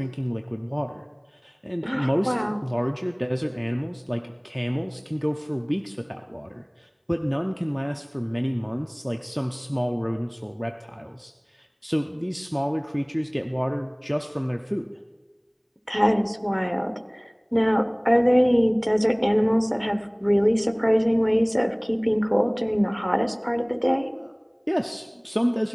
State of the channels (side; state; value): both; identical; correlation 1.00